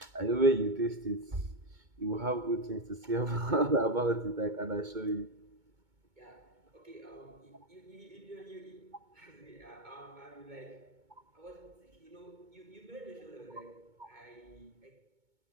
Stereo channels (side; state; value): left; late; 2.2 ms